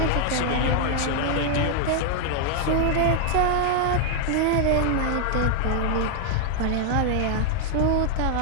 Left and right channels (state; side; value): different; both; correlation 0.00